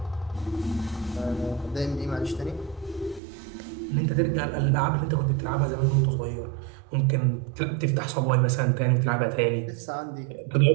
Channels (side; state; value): left; drops out; at 3.2 s